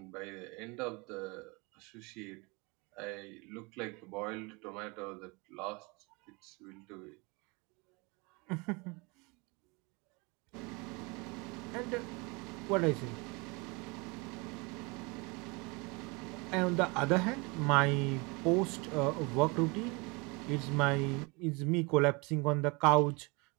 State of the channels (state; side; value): quieter; left; 28.0 dB